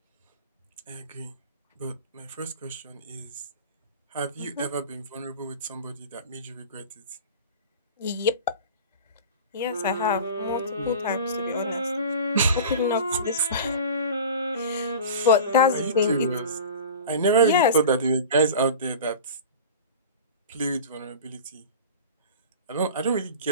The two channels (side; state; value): both; inverted; correlation -0.35